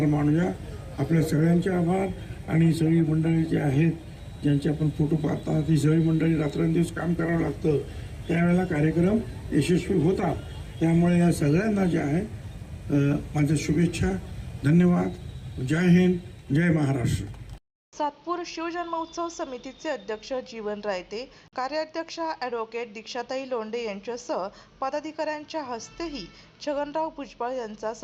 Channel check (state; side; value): identical; both; correlation 1.00